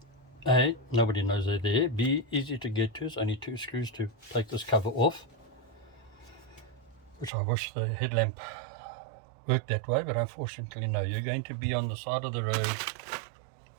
A, nobody knows they're there. B, easy to get to. It's only 2 screws to take this cover off, which I wish the headlamp worked that way, but unfortunately no. You're going to be on the side of the road,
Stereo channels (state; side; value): drops out; left; at 7.3 s